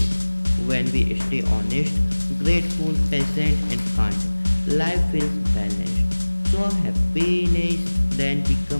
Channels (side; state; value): both; inverted; correlation -1.00